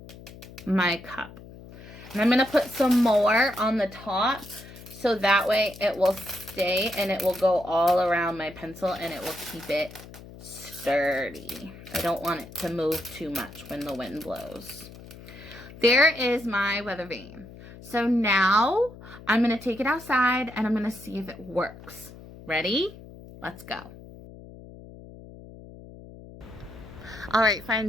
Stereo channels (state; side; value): noise; left; hum, 17 dB below the sound